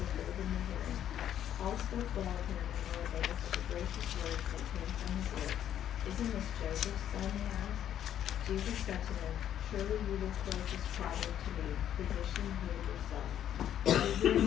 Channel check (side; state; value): right; quieter; 10.4 dB